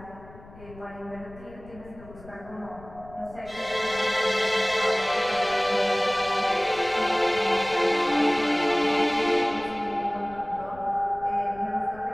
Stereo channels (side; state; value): left; noise; rumble, 20 dB below the sound